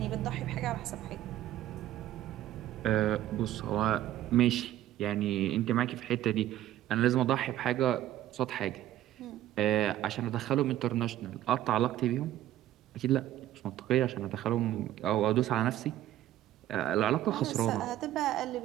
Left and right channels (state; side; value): quieter; left; 13.3 dB